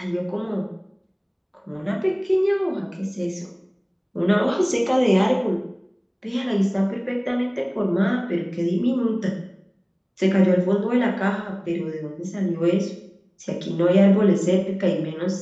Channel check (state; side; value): identical; both; correlation 1.00